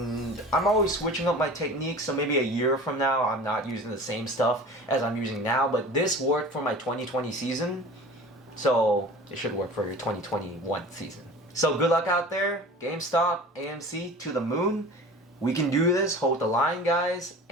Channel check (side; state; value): both; normal; correlation 0.39